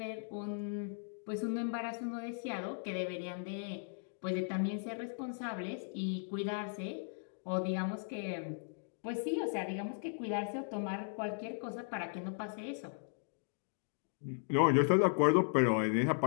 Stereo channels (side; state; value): right; silent; digital silence